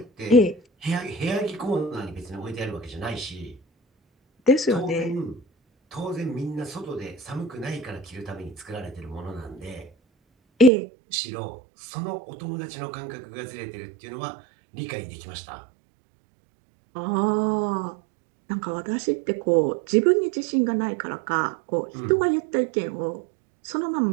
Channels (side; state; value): left; drops out; at 10.7 s